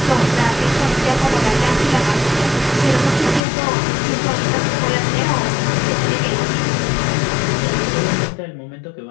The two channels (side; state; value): right; drops out; at 3.4 s